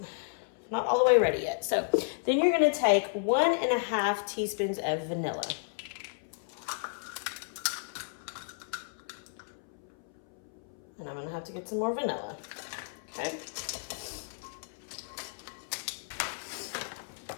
not all the way ready yet. So then you're gonna take 1.5 teaspoons of vanilla. And I'm gonna have to get some more vanilla, okay?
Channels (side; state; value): right; silent; 56 dB below the other